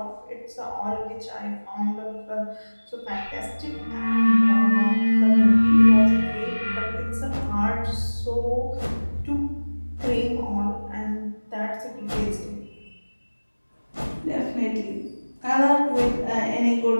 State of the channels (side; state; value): both; inverted; correlation -1.00